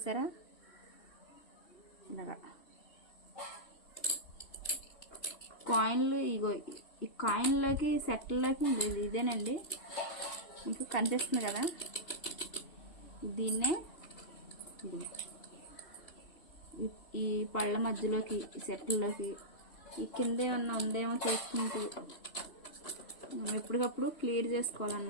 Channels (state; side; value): late; right; 3.0 ms